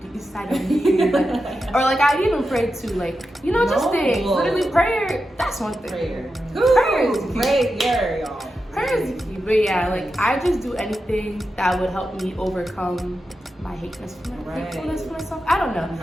the east side of me, like, or like I even pray too, like just things. Literally prayer. That's one thing. Prayer is key. Prayer, y'all. Prayer is key. But yeah, like I just do anything that would help me overcome my hatefulness for myself. I don't know.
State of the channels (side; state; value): both; normal; correlation 0.89